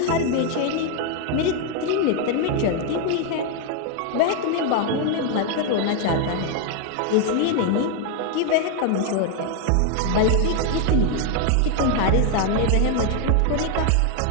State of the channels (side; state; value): both; different; correlation 0.01